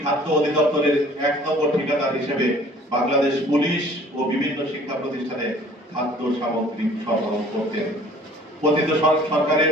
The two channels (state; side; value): normal; both; correlation 0.52